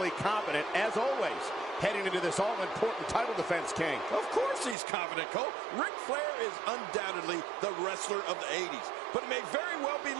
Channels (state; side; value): drops out; left; at 4.8 s